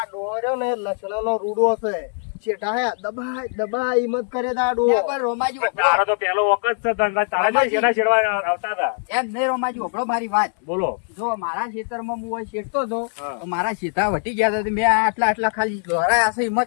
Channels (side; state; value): right; silent; 56 dB below the other